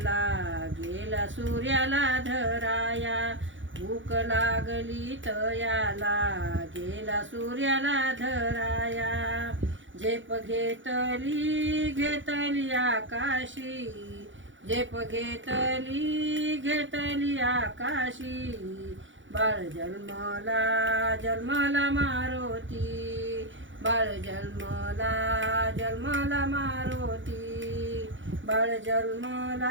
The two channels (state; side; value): late; left; 0.56 ms